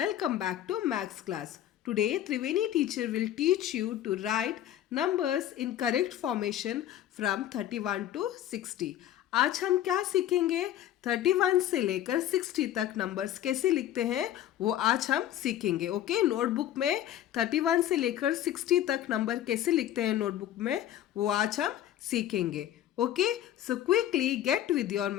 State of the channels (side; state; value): right; quieter; 12.0 dB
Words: back to Maths class. Today, Triveni teacher will teach you to write numbers in correct formation from 31 to 60. आज हम क्या सीखेंगे? 31 से लेकर 60 तक numbers कैसे लिखते हैं वो आज हम सीखेंगे. ओके, नोटबुक में 31 से लेकर 60 तक नंबर कैसे लिखते हैं नोटबुक में वो आज हम सीखेंगे. Okay, so quickly get with your